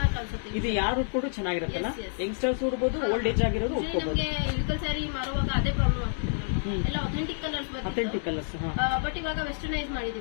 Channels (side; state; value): right; silent; digital silence